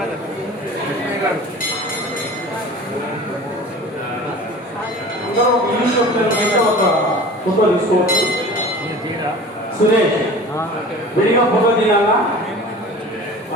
ఫోటో తీసుకోవచ్చు. సురేష్ విడిగా ఫోటో తీయాలా?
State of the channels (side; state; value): both; normal; correlation 0.40